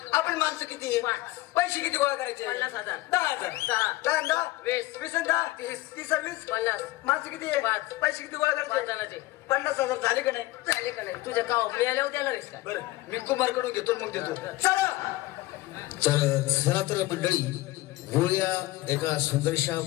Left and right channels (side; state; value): right; quieter; 18.7 dB